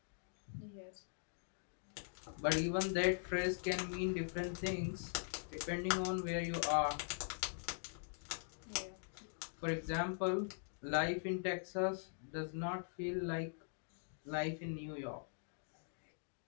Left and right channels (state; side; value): silent; right; digital silence